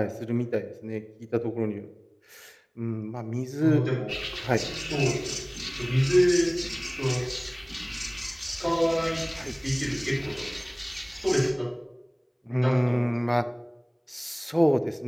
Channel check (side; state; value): both; identical; correlation 1.00